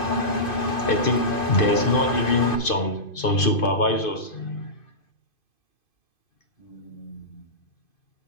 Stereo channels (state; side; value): late; right; 2.5 ms